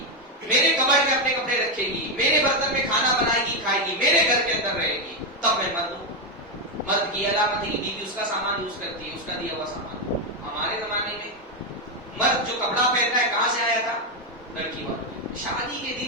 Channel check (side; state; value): both; normal; correlation 0.06